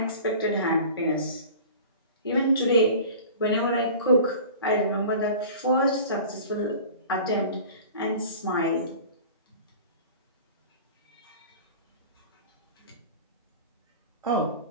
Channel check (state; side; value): inverted; both; correlation -0.40